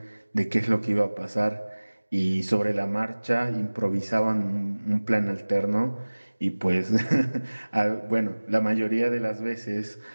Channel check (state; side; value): inverted; both; correlation -1.00